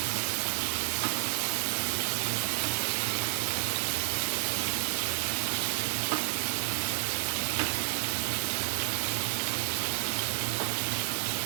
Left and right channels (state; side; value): silent; left; 57 dB below the other